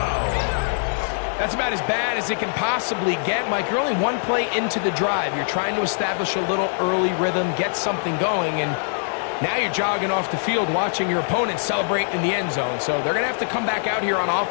That's about as bad as it can possibly get, Mike. You're only one play into the drive. You're trying to establish a little early rhythm, get something going, and now you're jogging off the field watching your opponent celebrate in the end zone. So they're going to have to come back out here on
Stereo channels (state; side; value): silent; right; digital silence